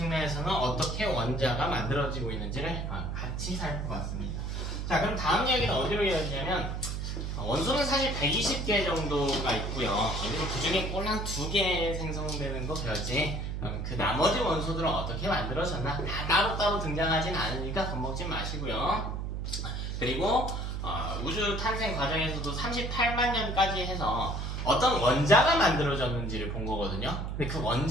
어떻게 원자가 만들어지고 있는지를 같이 살펴봤습니다. 자, 그럼 다음 이야기는 어디로 이어지냐면, 원소는 사실 120개 정도가 있고요. 그리고 그 중에 꼴 한 2개 생성되는 거 배웠지. 그 나머지 원소들은 어떻게 만들어졌나? 다 따로따로 등장하진 않으니까 겁먹지 마시고요. 그리고 우주 탄생 과정에서도 38만 년까지 해서 어떤 원자가 만들어졌는지를 본 거거든요. 근데 그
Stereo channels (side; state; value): right; noise; hum, 3 dB below the sound